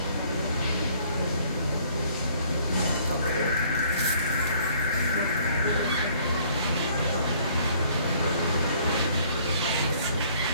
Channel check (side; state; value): both; inverted; correlation -0.60